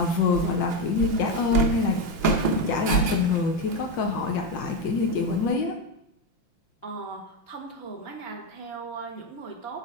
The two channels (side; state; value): right; late; 5.8 ms